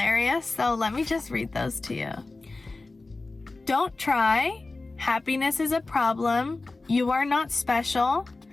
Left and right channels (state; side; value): quieter; right; 3.4 dB